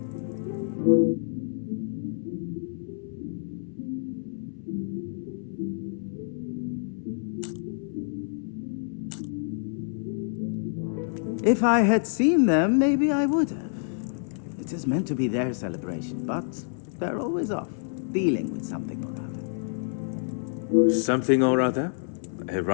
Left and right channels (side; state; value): right; silent; 59 dB below the other